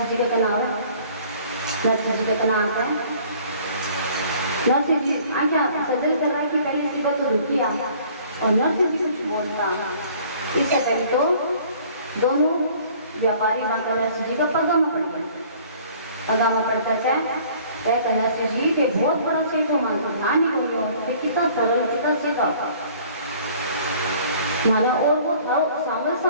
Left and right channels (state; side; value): inverted; both; correlation -0.53